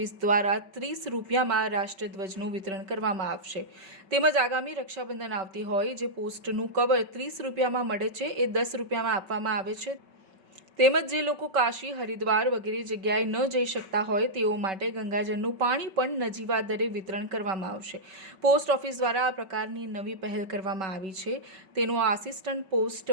દ્વારા 30 રૂપિયામાં રાષ્ટ્રધ્વજનું વિતરણ કરવામાં આવશે। તેમજ આગામી રક્ષાબંધન આવતી હોય, જે પોસ્ટનું કવર 30 રૂપિયામાં મળે છે એ 10 રૂપિયામાં આપવામાં આવે છે। તેમજ જે લોકો કાશી, હરિદ્વાર વગેરે જગ્યાએ ન જઈ શકતા હોય તેઓ માટે ગંગાજળનું પાણી પણ નજીવા દરે વિતરણ કરવામાં આવશે। પોસ્ટ ઓફિસ દ્વારા આ પ્રકારની નવી પહેલ કરવામાં આવી છે, તેનું આસિસ્ટન્ટ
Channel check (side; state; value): left; late; 5.3 ms